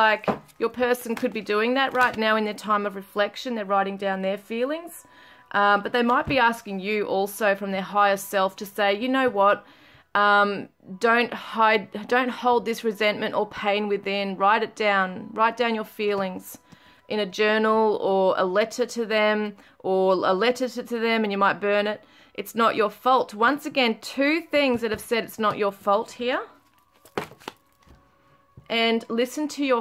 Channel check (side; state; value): both; identical; correlation 1.00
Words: your person could be doing that right now in their time of reflection. They're writing down their feelings. But they might be asking you also from their higher self to say, you know what, don't hold this resentment or pain within. Write it down. Write down your feelings in a journal, or a letter to them, and you might burn it. It's not your fault. Once again, two things that have said it's not your fault here. And listen to